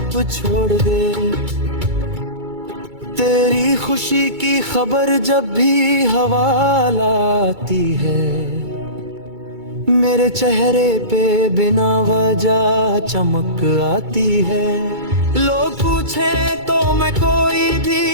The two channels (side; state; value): left; late; 2.3 ms